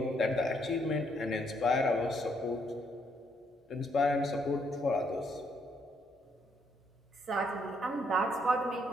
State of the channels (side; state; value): both; normal; correlation 0.72